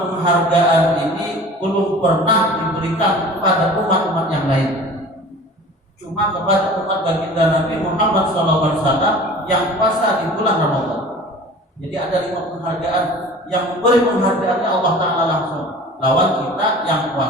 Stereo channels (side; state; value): both; normal; correlation 0.42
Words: ini belum pernah diberikan kepada umat-umat yang lain, cuma kepada umat baginda Nabi Muhammad SAW yang puasa di bulan Ramadan. Jadi ada 5 penghargaan, yang memberi penghargaannya Allah Ta'ala langsung, lawan kita yang